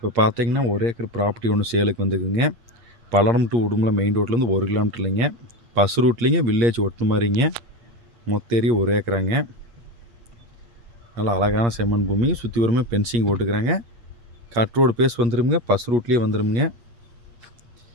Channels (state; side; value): late; left; 8.5 ms